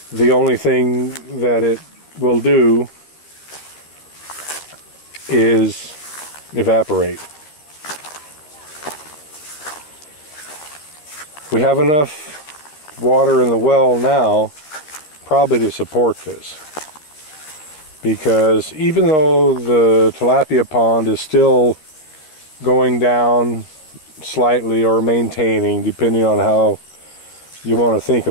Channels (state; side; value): late; right; 13 ms